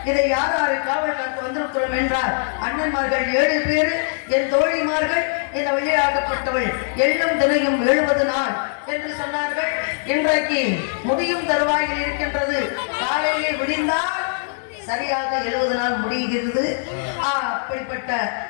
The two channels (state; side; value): silent; right; digital silence